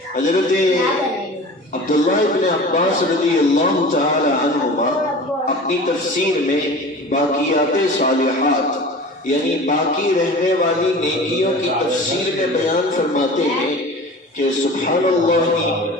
حضرت عبداللہ ابن عباس رضی اللہ تعالی عنہما اپنی تفسیر میں باقیات صالحات یعنی باقی رہنے والی نیکیوں کی تفسیر میں بیان فرماتے ہیں کہ سبحان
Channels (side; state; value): both; normal; correlation 0.38